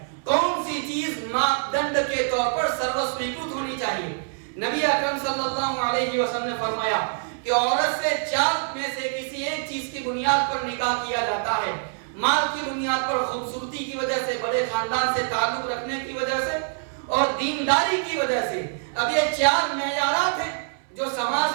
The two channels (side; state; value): left; silent; 60 dB below the other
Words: کون سی چیز ماپدنڈ کے طور پر سروسویکرت ہونی چاہیے۔ نبی اکرم صلی اللہ علیہ وسلم نے فرمایا کہ عورت سے 4 میں سے کسی ایک چیز کی بنیاد پر نکاح کیا جاتا ہے، مال کی بنیاد پر، خوبصورتی کی وجہ سے، بڑے خاندان سے تعلق رکھنے کی وجہ سے اور دینداری کی وجہ سے۔ اب یہ 4 معیارات ہیں جو